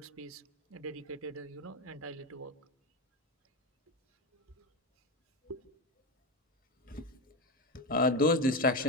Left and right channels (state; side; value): normal; both; correlation 0.15